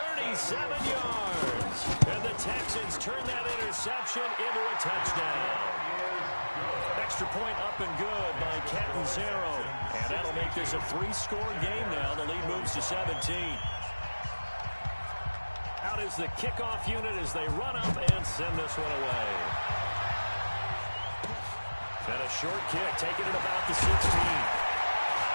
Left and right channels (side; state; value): both; inverted; correlation -1.00